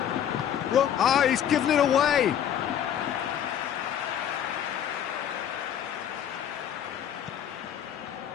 Ah, he's given it away.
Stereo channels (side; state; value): right; quieter; 9.7 dB